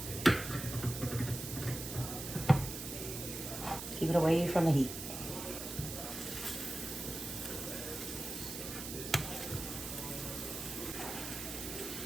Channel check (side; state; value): right; noise; hiss, 7 dB below the sound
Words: Keep it away from the heat.